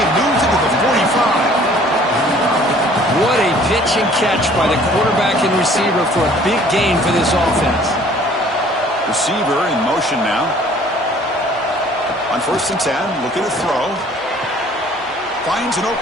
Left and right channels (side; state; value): both; normal; correlation 0.54